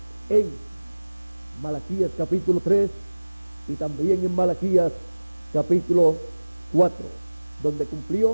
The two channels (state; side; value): inverted; both; correlation -1.00